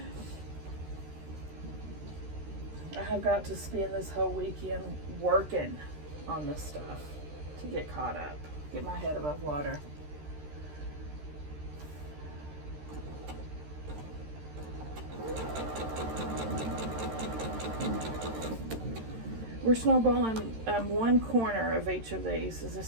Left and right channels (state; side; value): late; left; 13 ms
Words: I have got to spend this whole weekend working on this stuff to get caught up, get my head above water. We're snowballing one corner of each of these, as